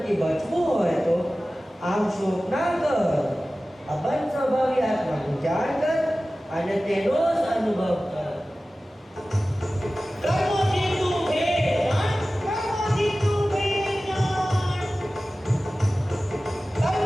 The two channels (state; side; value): normal; both; correlation 0.96